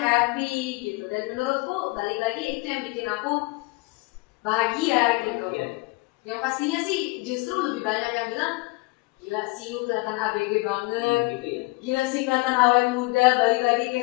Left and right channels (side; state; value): right; quieter; 24.8 dB